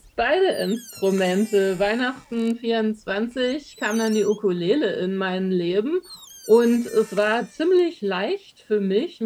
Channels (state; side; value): identical; both; correlation 1.00